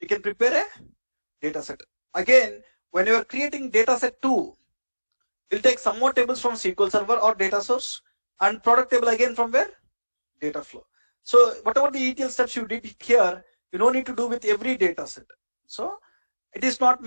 can prepare a data set. Again, when you are creating data set 2, you'll take some more tables from SQL Server or data source and product table again from where? Data flow. So whatever the ETL steps you did here, you don't need to do with every data set. So it is not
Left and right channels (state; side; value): inverted; both; correlation -1.00